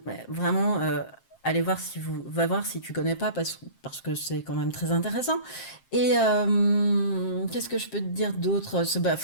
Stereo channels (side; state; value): right; late; 7.6 ms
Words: vraiment, allez voir va voir si tu connais pas, parce que c'est quand même très intéressant. Et qu'est-ce que je peux te dire d'autre? Bah,